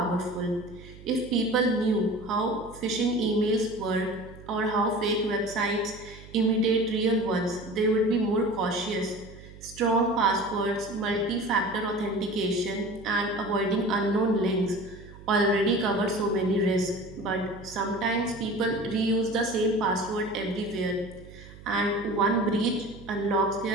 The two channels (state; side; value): noise; right; hum, 18 dB below the sound